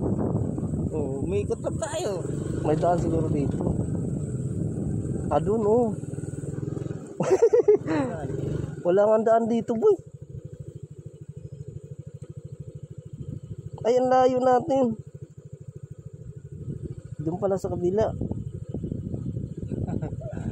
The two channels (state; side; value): identical; both; correlation 1.00